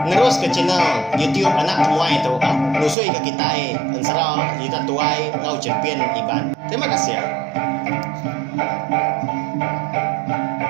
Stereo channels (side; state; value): left; drops out; at 3.0 s